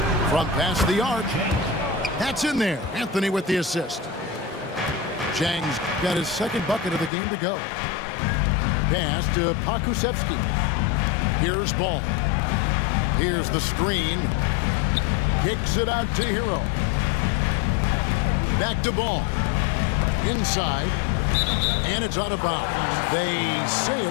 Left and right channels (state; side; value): drops out; right; at 7.1 s